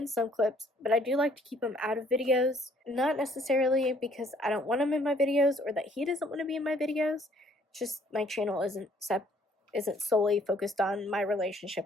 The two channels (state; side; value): normal; both; correlation 0.62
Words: some clips, but I do like to keep him out of videos. Not necessarily because I don't want him in my videos or that he doesn't want to be in my videos. Just my channel isn't solely focused on my relationship